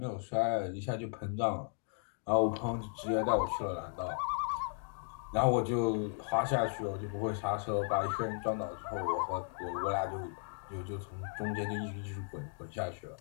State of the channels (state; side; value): silent; right; 54 dB below the other